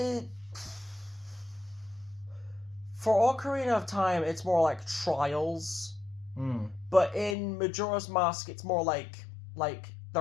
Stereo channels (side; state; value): right; drops out; at 7.4 s